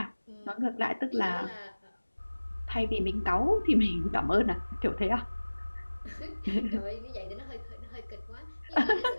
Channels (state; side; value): inverted; both; correlation -1.00